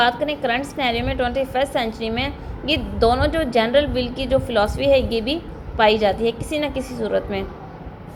करें करंट सिनेरियो में 21st सेंचुरी में, ये दोनों जो जनरल विल की जो फ़िलासफ़ी है ये भी पाई जाती है किसी न किसी सूरत में।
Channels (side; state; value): both; identical; correlation 1.00